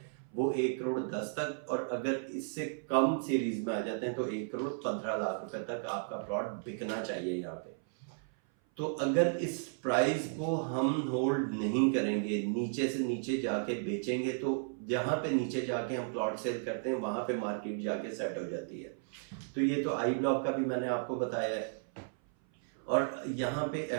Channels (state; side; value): silent; left; 55 dB below the other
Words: वो 1 करोड़ 10 तक। और अगर इससे कम सीरीज में आ जाते हैं तो 1 करोड़ 15 लाख रुपए तक आपका प्लॉट बिकना चाहिए यहाँ पे। तो अगर इस प्राइस को हम होल्ड नहीं करेंगे, नीचे से नीचे जाके बेचेंगे, तो जहां पे नीचे जाके हम प्लॉट सेल करते हैं वहां पे मार्केट जाके सेट हो जाती है। तो ये तो आई ब्लॉक का भी मैंने आपको बताया है। और यहाँ पे